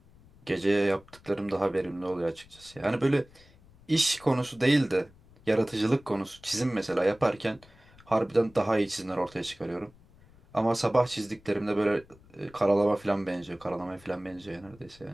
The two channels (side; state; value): left; noise; rumble, 26 dB below the sound